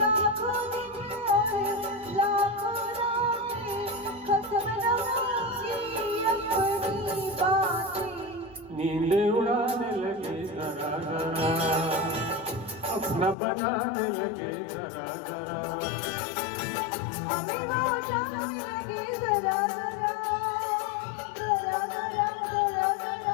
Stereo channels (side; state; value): right; drops out; at 13.4 s